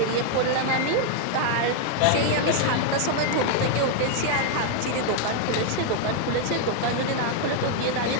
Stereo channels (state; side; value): different; both; correlation 0.00